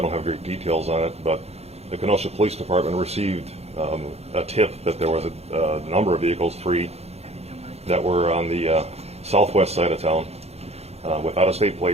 don't have great details on it, but the Kenosha Police Department received a tip that there was a number of vehicles, 3, that were on the southwest side of town with out-of-state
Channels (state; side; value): late; left; 0.30 ms